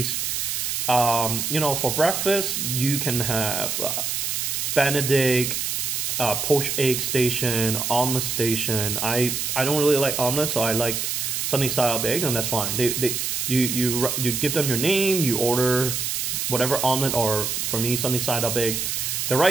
For breakfast, you can have Benedict, poached egg station, omelet station. I don't really like omelet, so I like sunny side up eggs, and that's fine. You give them your name, you order whatever omelet, or for me sunny side up eggs. They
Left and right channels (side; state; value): right; noise; hiss, 1 dB below the sound